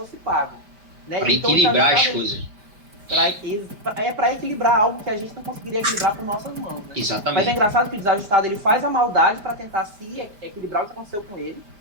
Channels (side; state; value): left; late; 5.0 ms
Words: pago. Né? Para então, equilibrar as coisas. Para equilibrar algo que a gente não conseguiria equilibrar por nossas mãos. Né? Exatamente. Mas é engraçado que o desajustado ele faz a maldade para tentar se equilibrar o que aconteceu com ele.